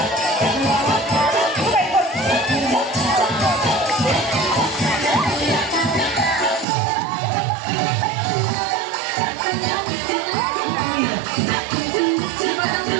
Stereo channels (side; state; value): left; drops out; at 6.7 s